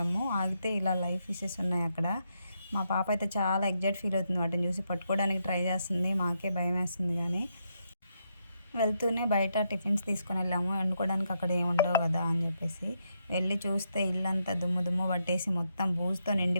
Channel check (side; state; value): both; inverted; correlation -0.80